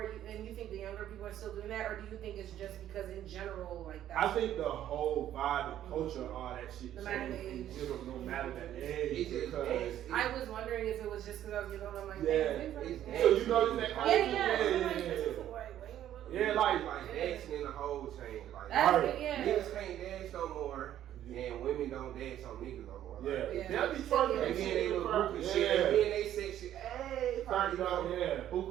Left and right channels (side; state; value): left; quieter; 11.6 dB